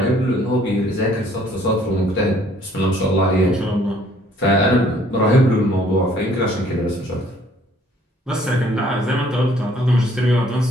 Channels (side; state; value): both; normal; correlation 0.60